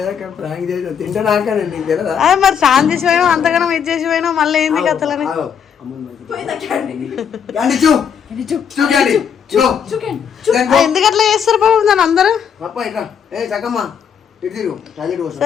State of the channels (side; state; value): right; quieter; 7.6 dB